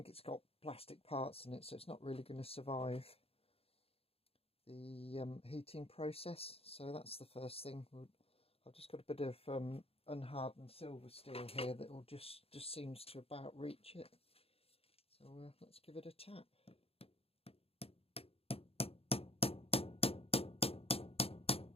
it's got plastic parts in it, so it's not really going to survive the heating process. So that's the first thing. I've just got a bit of unhardened silver steel here that will just seems to about reach it. So let's give it a tap.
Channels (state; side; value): late; right; 0.28 ms